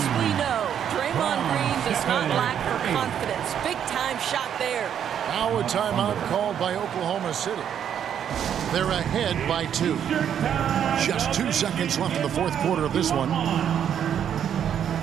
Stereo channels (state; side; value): quieter; left; 9.0 dB